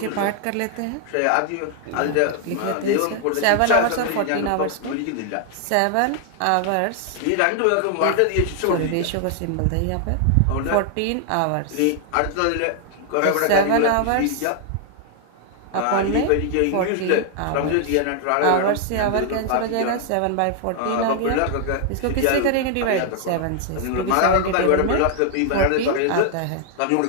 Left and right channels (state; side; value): different; both; correlation 0.00